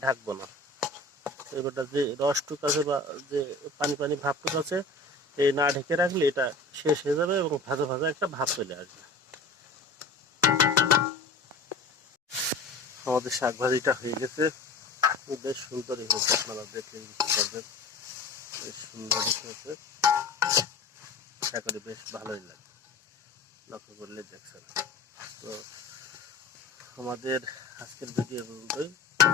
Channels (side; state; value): right; quieter; 3.3 dB